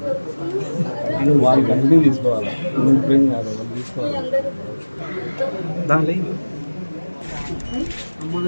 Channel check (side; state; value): both; inverted; correlation -1.00